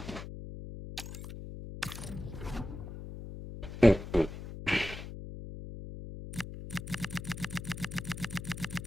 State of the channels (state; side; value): noise; left; hum, 9 dB below the sound